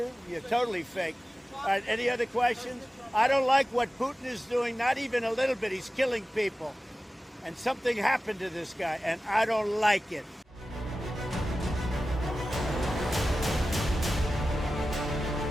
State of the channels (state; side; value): normal; both; correlation 0.95